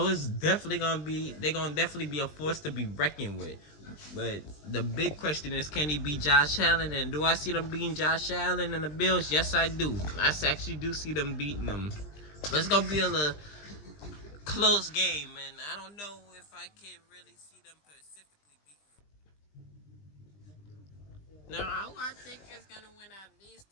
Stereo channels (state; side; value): late; right; 20 ms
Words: it's definitely gonna definitely be a force to be reckoned with. But the big question is, can he beat Josh Allen? And do I see them beating Josh Allen and the Bills? Yes, I do. I actually do see them beating them. But it's gonna be a little close game, and I don't know if I can really see them specifically beating them. Now, who I think is gonna win out of these